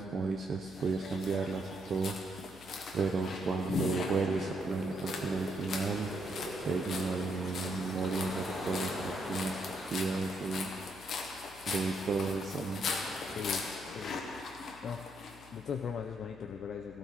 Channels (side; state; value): left; noise; hum, 21 dB below the sound